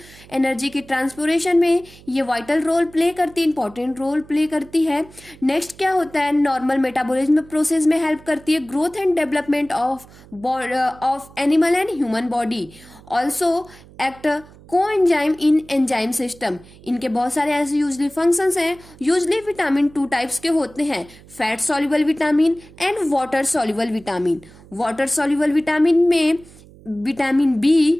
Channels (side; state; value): right; noise; hum, 23 dB below the sound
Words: Energy के ट्रांसपोरेशन में ये वाइटल रोल प्ले करती है, इंपॉर्टेंट रोल प्ले करती है। नेक्स्ट क्या होता है, नॉर्मल मेटाबॉलिज्म प्रोसेस में हेल्प करती है, growth and development of animal and human body. Also act coenzyme in enzyme system. इनके बहुत सारे ऐसे यूजली फंक्शंस हैं। यूजली विटामिन 2 टाइप्स के होते हैं, fat soluble vitamin and water soluble vitamin. Water soluble vitamin में vitamin